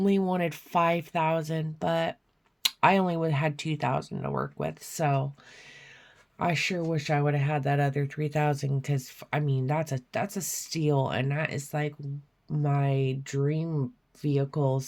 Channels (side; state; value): both; identical; correlation 1.00